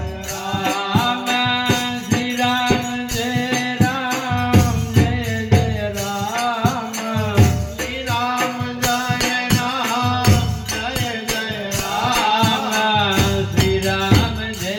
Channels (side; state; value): both; identical; correlation 1.00